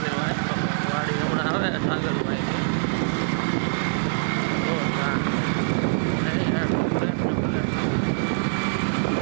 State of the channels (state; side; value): silent; left; digital silence